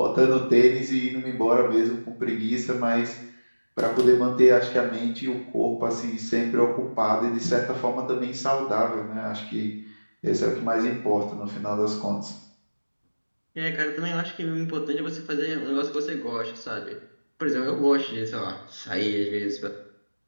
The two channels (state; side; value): inverted; both; correlation -1.00